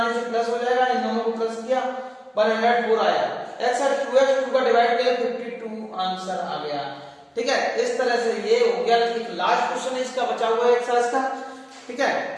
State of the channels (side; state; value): both; identical; correlation 1.00